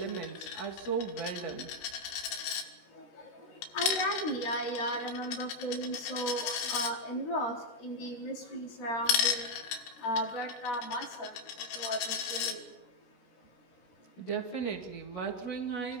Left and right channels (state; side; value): late; right; 16 ms